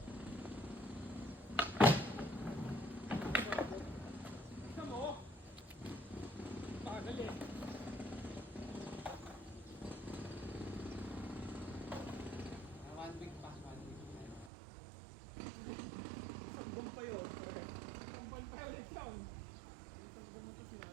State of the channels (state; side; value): drops out; left; at 14.5 s